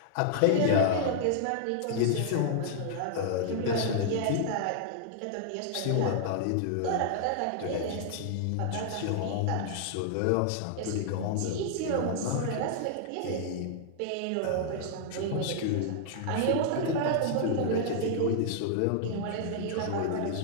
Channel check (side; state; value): both; different; correlation -0.01